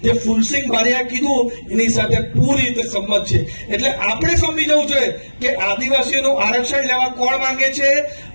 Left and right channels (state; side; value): inverted; both; correlation -1.00